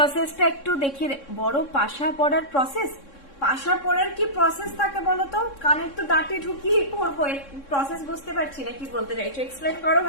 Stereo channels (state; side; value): late; right; 3.6 ms